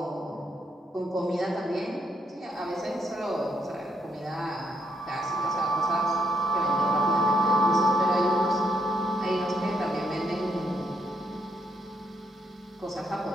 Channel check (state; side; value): normal; both; correlation 0.76